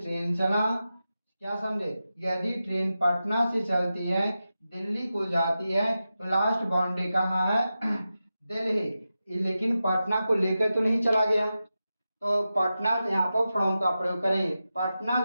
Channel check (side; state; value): both; inverted; correlation -0.92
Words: चला, क्या समझे? यदि ट्रेन पटना से चलती है, दिल्ली को जाती है, तो लास्ट बाउंड्री कहाँ है? दिल्ली। लेकिन पटना को लेकर तो नहीं चला गया, तो पटना यहाँ पर फ्रॉम का प्रयोग करेंगे। पटना